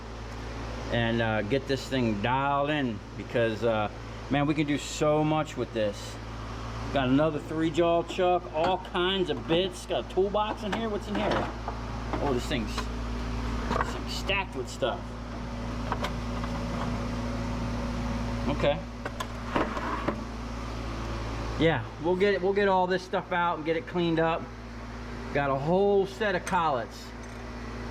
and get this thing dialed in, because man, we can do so much with this. Got another 3-jaw chuck, all kinds of bits. Got a toolbox in here. What's in here? Oh, this thing's stacked with stuff. Okay. Yeah, we'll get all this stuff out and get it cleaned up. Got a whole set of collets.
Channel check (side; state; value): both; identical; correlation 1.00